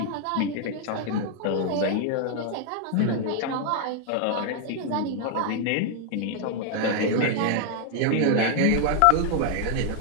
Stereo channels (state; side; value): different; both; correlation 0.00